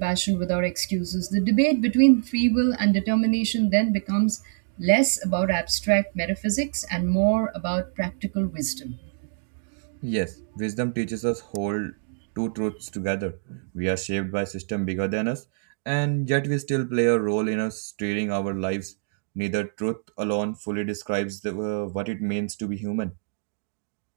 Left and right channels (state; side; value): silent; left; digital silence